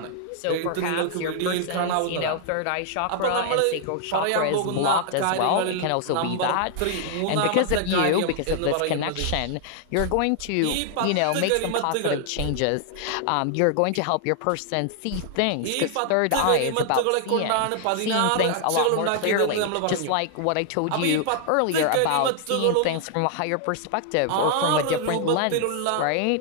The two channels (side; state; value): both; different; correlation 0.00